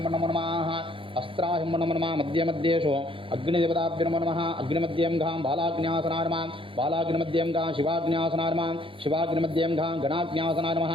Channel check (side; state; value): left; late; 0.25 ms